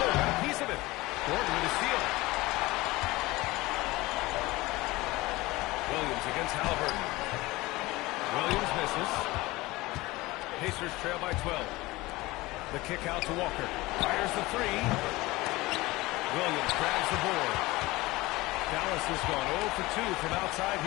a piece of it. Gordon with a steal. Williams against Halliburton. Williams misses. Pacers trail by 12. The kick out to Walker. Fires the three. Williams grabs the board. Dallas has gone 0 for 2 from outside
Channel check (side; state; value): right; quieter; 20.4 dB